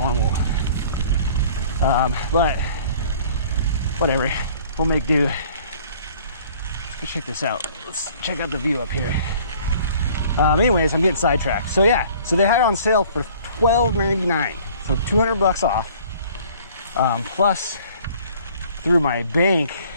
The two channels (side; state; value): both; inverted; correlation -0.53